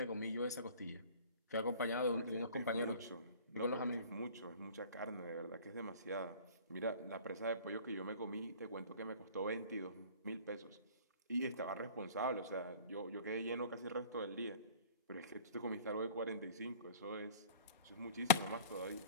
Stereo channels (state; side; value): inverted; both; correlation -0.46